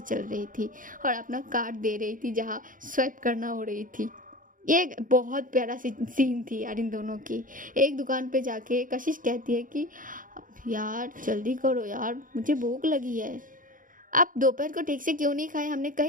चल रही थी और अपना कार्ड दे रही थी जहाँ स्वाइप करना हो रही थी। ये बहुत प्यारा सीन थी यार इन दोनों की। एक दुकान पे जाके कशिश कहती है कि यार जल्दी करो यार, मुझे भूख लगी है, आप दोपहर को ठीक से क्यों नहीं खाए, हमने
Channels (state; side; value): late; left; 0.39 ms